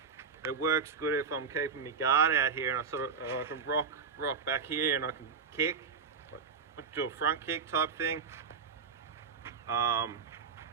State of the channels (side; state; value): left; quieter; 5.7 dB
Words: it works good if I'm keeping my guard out here, and I can rock back here, and I can kick, like do a front kick type thing.